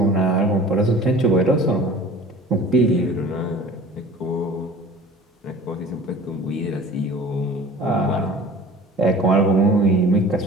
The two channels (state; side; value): normal; both; correlation 0.43